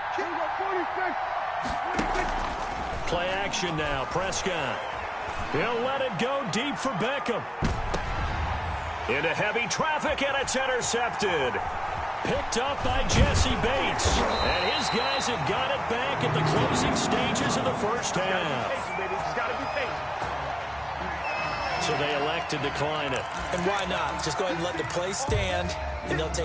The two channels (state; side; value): identical; both; correlation 1.00